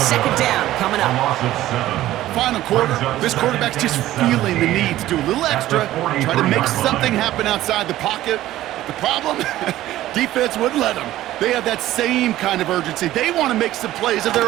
down coming up. Final quarter, this quarterback's just feeling the need to do a little extra, try to make something happen outside the pocket. The problem? Defense wouldn't let them. They have that same kind of urgency. They want to make some plays of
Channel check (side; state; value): left; quieter; 14.6 dB